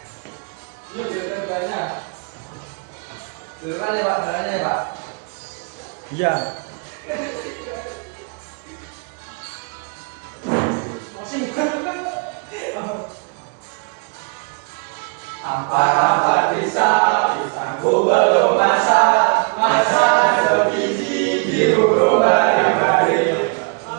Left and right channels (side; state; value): left; quieter; 36.2 dB